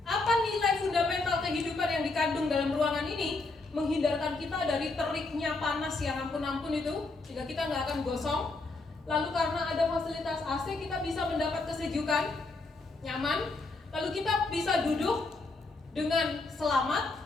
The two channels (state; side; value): quieter; right; 3.5 dB